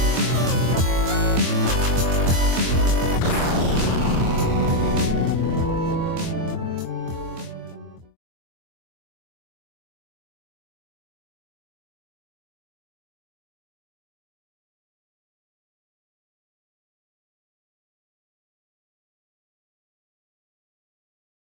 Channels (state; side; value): late; left; 24 ms